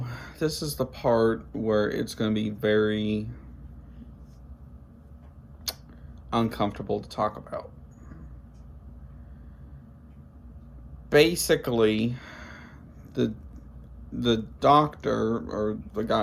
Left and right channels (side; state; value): both; identical; correlation 1.00